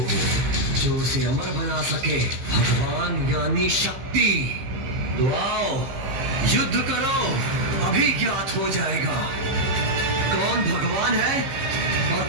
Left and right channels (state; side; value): late; left; 15 ms